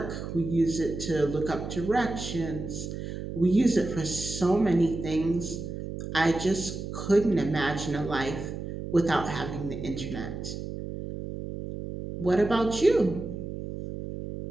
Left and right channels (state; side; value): noise; right; hum, 7 dB below the sound